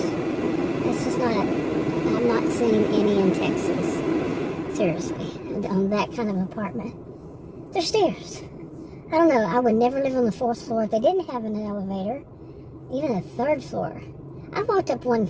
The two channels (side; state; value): both; identical; correlation 1.00